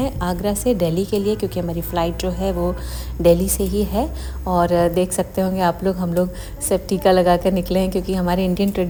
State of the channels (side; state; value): both; identical; correlation 1.00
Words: आगरा से दिल्ली के लिए, क्योंकि हमारी फ़्लाइट जो है वो दिल्ली से ही है। और देख सकते होंगे आप लोग, हम लोग सब टीका लगा कर निकले हैं, क्योंकि हमारे इंडियन